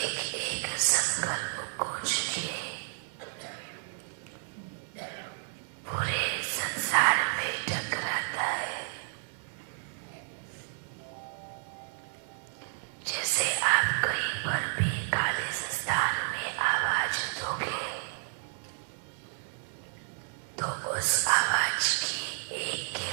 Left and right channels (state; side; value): silent; left; 57 dB below the other